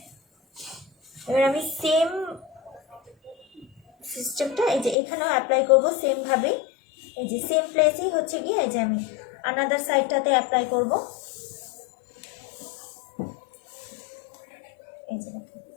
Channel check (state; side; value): drops out; right; at 5.0 s